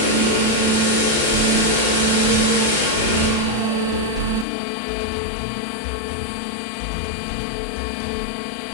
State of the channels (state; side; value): drops out; right; at 4.5 s